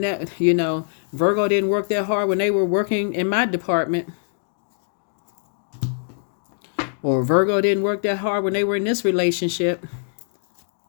that, you know, Virgo didn't work that hard when they were working in my department. Or Virgo didn't work that hard when they were in this relationship.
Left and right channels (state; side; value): silent; right; digital silence